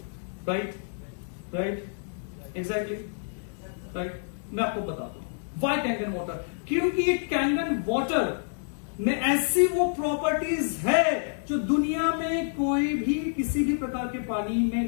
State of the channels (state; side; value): silent; right; digital silence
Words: Right, exactly, right. मैं आपको बताता हूं व्हाई कैंगन वाटर। क्योंकि ये कैंगन वाटर में ऐसी वो प्रॉपर्टीज है जो दुनिया में कोई भी किसी भी प्रकार के पानी में